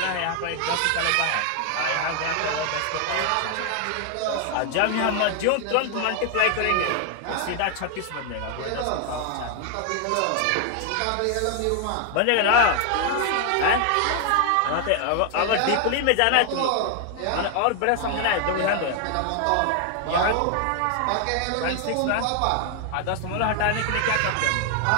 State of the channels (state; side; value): different; both; correlation 0.00